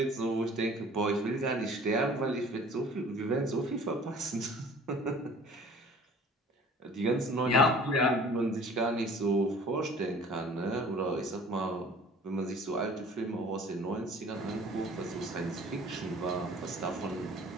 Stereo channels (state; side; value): normal; both; correlation 0.48